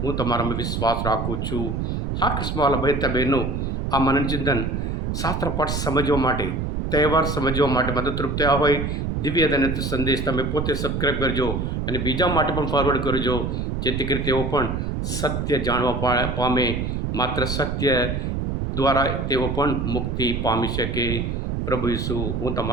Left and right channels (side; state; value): right; noise; rumble, 2 dB below the sound